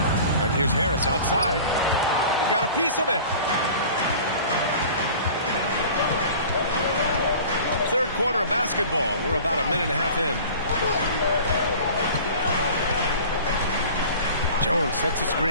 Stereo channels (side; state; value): both; inverted; correlation -0.42